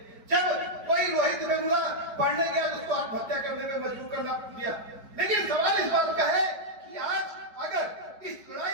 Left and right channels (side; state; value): left; late; 4.9 ms